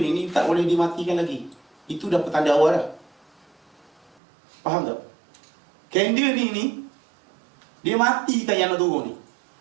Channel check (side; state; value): left; drops out; at 4.1 s